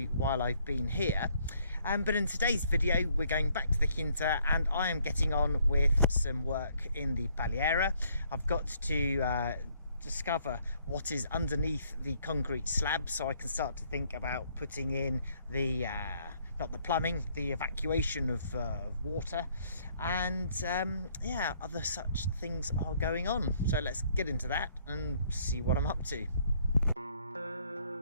while I've been here. But in today's video, we're going back to the Quinta, and I am getting on with some work in the Paliera. I've got to discover what is underneath the concrete slab, so I can start to think about putting in the not the plumbing, the evacuation of water, and yeah, other such things are going on. So let's get into that and see what I'm up to.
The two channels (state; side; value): inverted; both; correlation -0.66